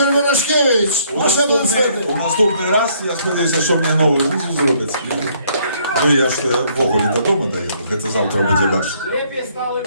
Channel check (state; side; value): inverted; both; correlation -0.66